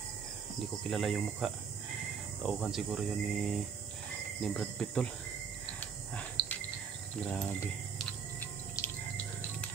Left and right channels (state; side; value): quieter; left; 6.5 dB